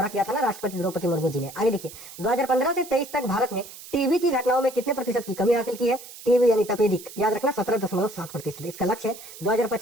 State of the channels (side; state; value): right; noise; hiss, 16 dB below the sound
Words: किया था ना राष्ट्रपति द्रौपदी मुर्मू जी ने। आगे देखिए, 2015 से 23 तक भारत ने टीबी की घटनाओं में कितने प्रतिशत की कमी हासिल की है? टीबी यानी तपेदिक, याद रखना 17.7%। इसका लक्ष्य है